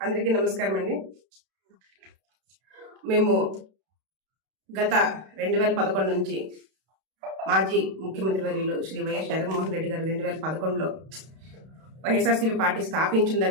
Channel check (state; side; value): late; left; 32 ms